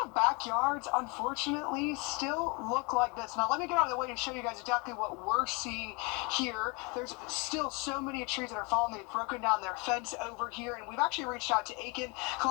of backyards, unfortunately, still look like this. Now, let me get out of the way and show you guys exactly what we're seeing here. There's still so many trees that are falling. They've broken down their fence over here, and we've actually reached out to Aiken,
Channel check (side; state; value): right; quieter; 29.8 dB